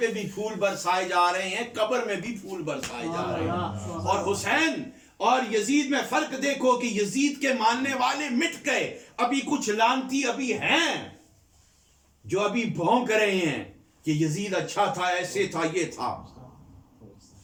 بھی پھول برسائے جا رہے ہیں، قبر میں بھی پھول برسائے جا رہے ہیں۔ اور حسین اور یزید میں فرق دیکھو کہ یزید کے ماننے والے مٹ گئے، ابھی کچھ لعنتی ابھی ہیں جو ابھی بھونک رہے ہیں کہ یزید اچھا تھا، ایسے تھا، یہ تھا۔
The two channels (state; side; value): identical; both; correlation 1.00